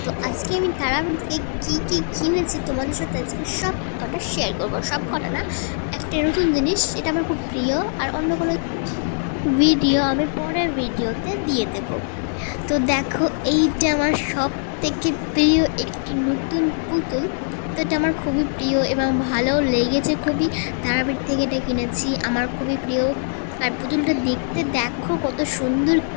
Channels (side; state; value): right; silent; digital silence